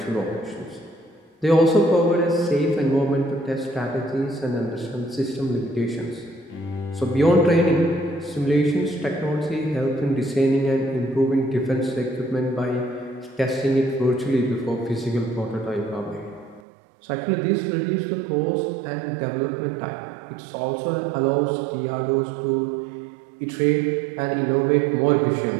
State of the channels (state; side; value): drops out; left; at 16.6 s